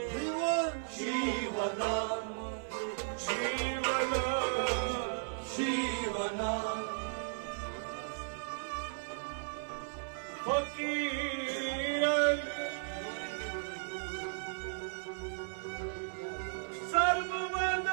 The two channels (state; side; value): silent; left; digital silence